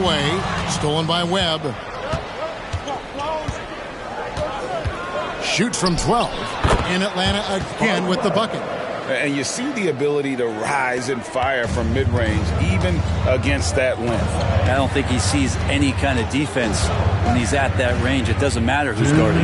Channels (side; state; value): both; identical; correlation 1.00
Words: Stolen by Webb. Shoots from 12. In Atlanta again with the bucket. And you see the ability to rise and fire from mid-range, even against that length. I don't think he sees any kind of defense when he's at that range. It doesn't matter who's guarding